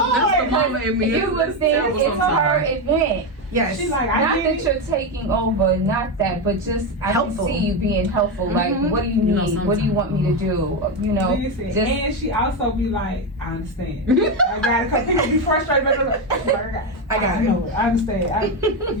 the mama in me. You would think it's her event. Yes. She's like, Not that you're taking over, not that, but just I Helpful. can see you being helpful. Like, what do you need? What do you want me to do? You know, Listen, just and she also be like, I understand. I got it. Because people be frustrated. I got it. No, I understand.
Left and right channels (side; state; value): both; normal; correlation 0.11